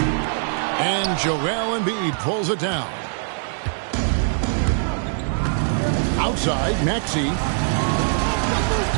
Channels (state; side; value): silent; left; digital silence